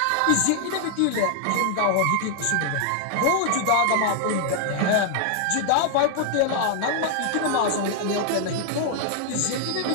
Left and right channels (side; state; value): both; different; correlation 0.00